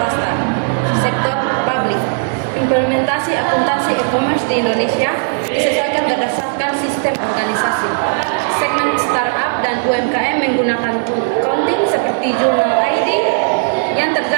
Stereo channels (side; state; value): left; silent; digital silence